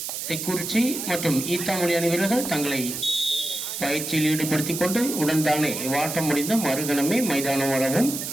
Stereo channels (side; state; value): right; noise; hiss, 5 dB below the sound